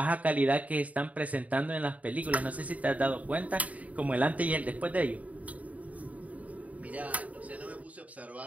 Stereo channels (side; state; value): left; late; 0.070 ms